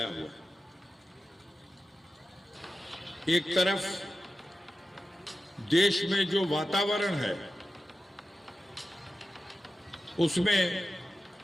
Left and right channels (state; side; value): normal; both; correlation 0.93